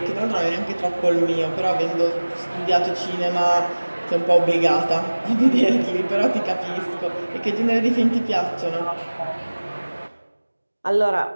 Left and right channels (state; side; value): inverted; both; correlation -1.00